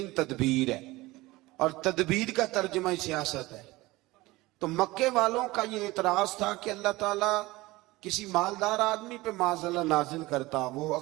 تدبیر ہے, اور تدبیر کا ترجمہ سیاست ہے. تو مکے والوں کا یہ اعتراض تھا کہ اللہ تعالیٰ کسی مالدار آدمی پہ معاذ اللہ نازل کرتا. وہ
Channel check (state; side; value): quieter; left; 20.1 dB